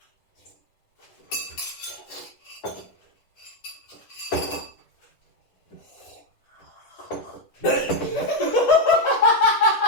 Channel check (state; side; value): late; right; 10 ms